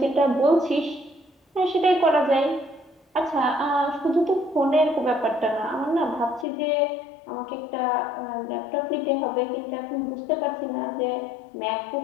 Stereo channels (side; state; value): right; drops out; at 6.5 s